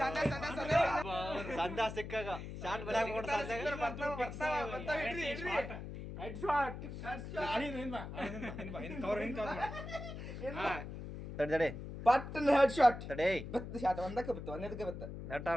ಸಂದ ಸಿಕ್ಕಾಗ ಶಾಟ್ ಬರಕ್ ತಡೆ ಪಟ್ಟನ ಹೆಡ್ ಶಾಟ್ ತಡೆ ಬತ್ತ ಶಾಟ್ ಒಂದಕ್ಕೆ ಬತ್ತ ಒಂದಕ್ಕೆ ಬತ್ತ ನೆಟ್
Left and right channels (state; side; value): noise; left; hum, 9 dB below the sound